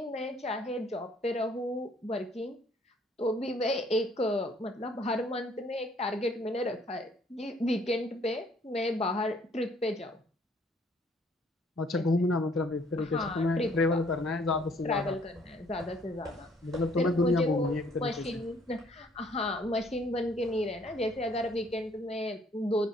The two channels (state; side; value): normal; both; correlation 0.62